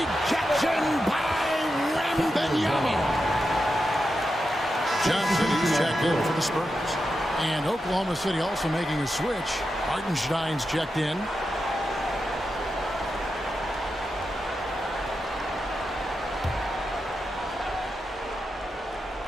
by the Spurs. And Oklahoma City also making a switch. Hartenstein's checked in.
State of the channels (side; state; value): both; normal; correlation 0.88